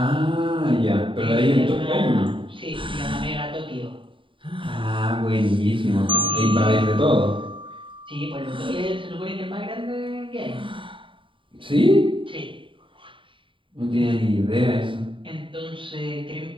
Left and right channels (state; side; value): late; left; 0.25 ms